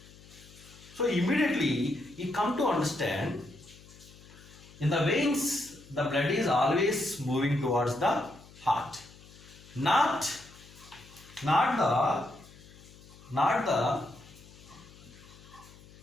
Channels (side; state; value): left; noise; hum, 22 dB below the sound